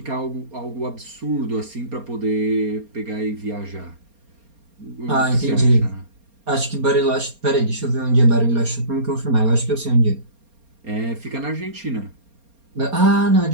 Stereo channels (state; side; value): late; left; 4.3 ms